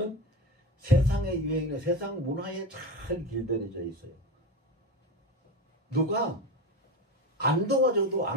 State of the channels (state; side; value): normal; both; correlation 0.22